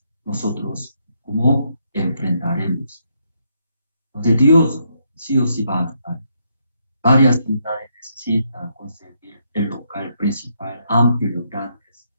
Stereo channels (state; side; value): inverted; both; correlation -0.76